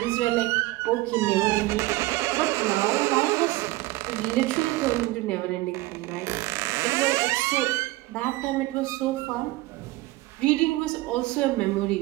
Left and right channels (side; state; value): left; quieter; 19.2 dB